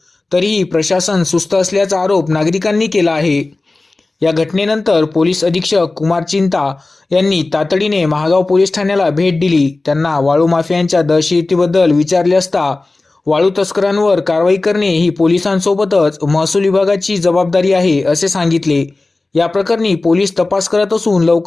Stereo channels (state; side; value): quieter; right; 3.2 dB